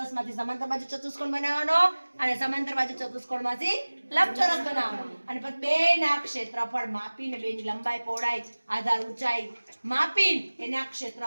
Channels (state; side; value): inverted; both; correlation -1.00